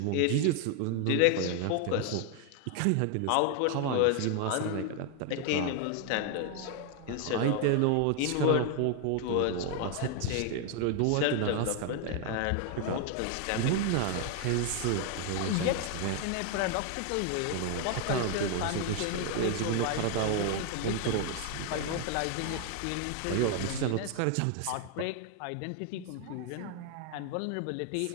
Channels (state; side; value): different; both; correlation 0.00